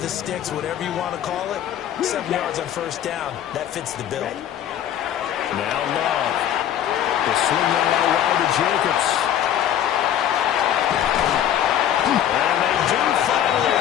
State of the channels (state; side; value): quieter; right; 10.6 dB